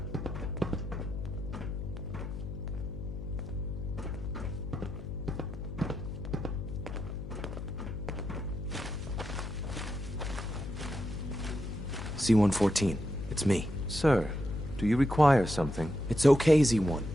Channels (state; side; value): noise; left; hum, 7 dB below the sound